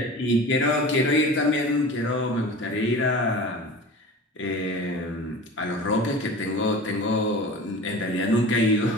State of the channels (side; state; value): both; normal; correlation 0.36